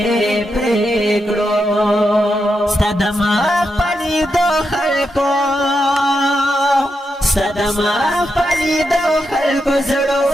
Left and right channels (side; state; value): both; normal; correlation 0.85